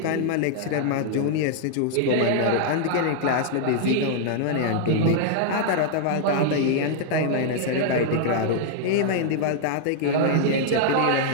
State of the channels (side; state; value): both; different; correlation -0.01